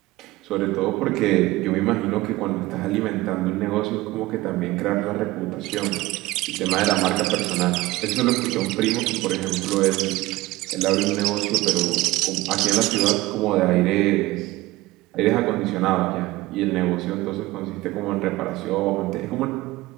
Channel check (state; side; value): quieter; left; 18.9 dB